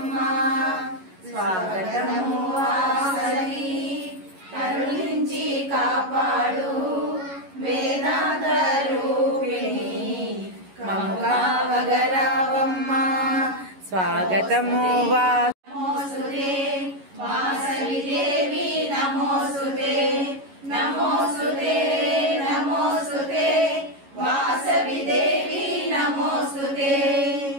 స్వాగతము వాసవి కరుణించి కాపాడు వేదాంత రూపిణి మము కావగరావమ్మా స్వాగతము నమోస్తుతే వాసవి దేవి నమోస్తుతే నమోస్తుతే నమోస్తుతే వాసవి దేవి నమోస్తుతే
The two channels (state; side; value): late; left; 11 ms